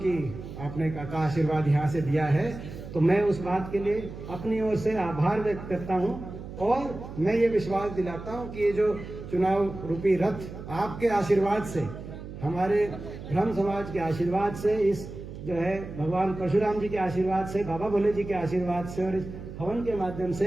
की आपने का आशीर्वाद यहाँ से दिया है, तो मैं उस बात के लिए अपनी ओर से आभार व्यक्त करता हूँ और मैं ये विश्वास दिलाता हूँ कि ये जो चुनाव रूपी रथ आपके आशीर्वाद से, हमारे ब्रह्म समाज के आशीर्वाद से, इस जो है भगवान परशुराम जी के आशीर्वाद से, बाबा भोले जी के आशीर्वाद से और इस हवन के माध्यम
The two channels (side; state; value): right; noise; hum, 11 dB below the sound